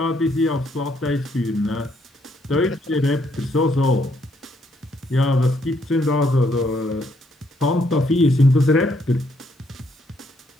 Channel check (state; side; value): normal; both; correlation 0.72